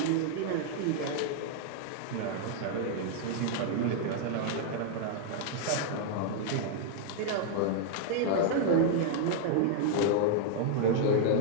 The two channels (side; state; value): both; different; correlation -0.01